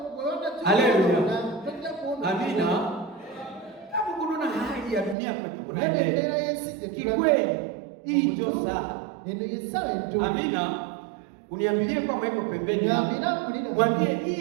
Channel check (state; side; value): drops out; left; at 5.2 s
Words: Haleluya. Amina. Kama kuna hali ya dunia kwa kikweli, hii ndio saa. Amina. Uniambilie kwamba iko pembeni. Mwambie